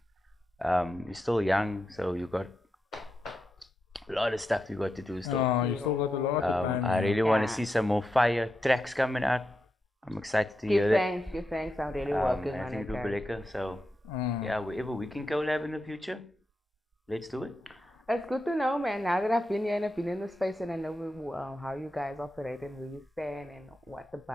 You're still young, so you got a lot of stuff you got to do still. Oh, you still got a lot of time. I really want to see some more fire tracks coming out. I'm excited to hear that. Give thanks. I'm really working I on think it. it'll be Guys. lekker. So yeah, wherever we can collab in the future, let's do it. It's good to know, man. Now that I've been here and I've been in the space and I know how you guys operate and where you stand and what the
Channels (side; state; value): both; normal; correlation 0.87